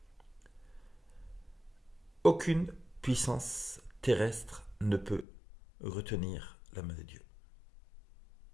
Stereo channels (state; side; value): drops out; right; at 5.2 s